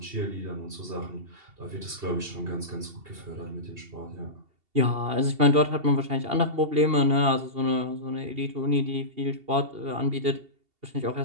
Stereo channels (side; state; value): left; late; 2.7 ms